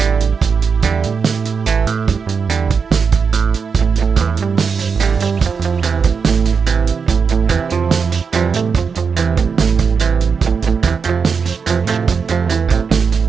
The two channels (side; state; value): left; quieter; 5.7 dB